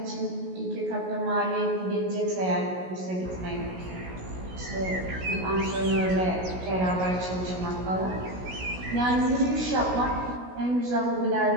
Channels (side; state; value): left; late; 16 ms